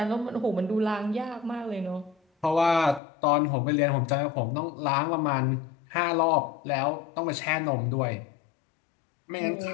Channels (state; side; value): drops out; right; at 3.0 s